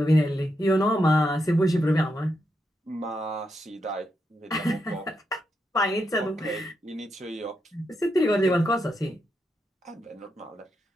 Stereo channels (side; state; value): both; normal; correlation 0.83